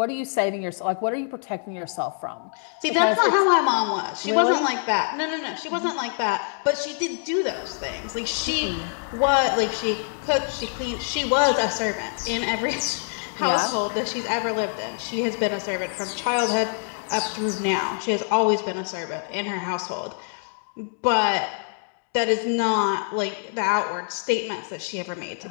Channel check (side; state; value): right; silent; 57 dB below the other